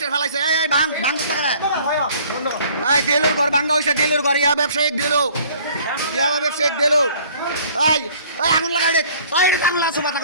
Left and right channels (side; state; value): both; inverted; correlation -0.54